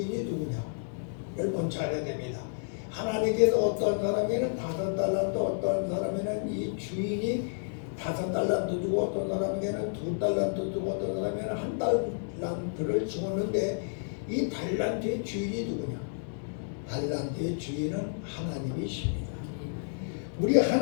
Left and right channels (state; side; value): silent; right; digital silence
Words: 누구냐? 를 먼저 알아야 됩니다. 하나님께서 어떠한 사람에게는 5달란트, 어떠한 사람에게는 이 주인이 5달란트 주고 어떤 사람에게는 2달란트 주고 어떤 사람에게는 1달란트를 주었는데 이 달란트의 주인이 누구냐? 달란트의 주인은 하나님이십니다. 우리